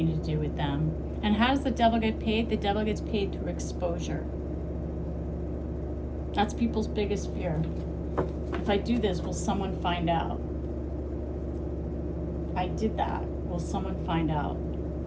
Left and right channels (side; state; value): both; identical; correlation 1.00